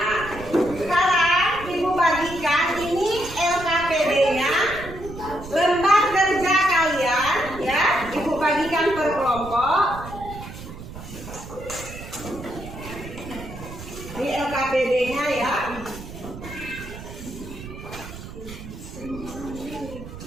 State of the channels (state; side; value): noise; right; rumble, 12 dB below the sound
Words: sekarang ibu bagikan ini LKPD-nya, lembar kerja kalian ya. Ibu bagikan per kelompok. Ini LKPD-nya ya.